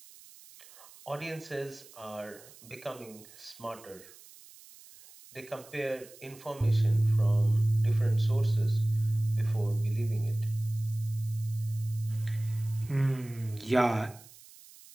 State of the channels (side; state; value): right; noise; hiss, 21 dB below the sound